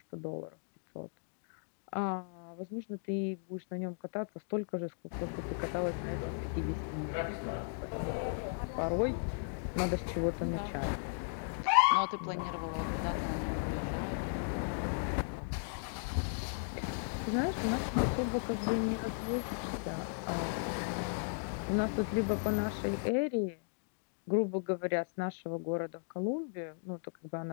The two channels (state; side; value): silent; right; digital silence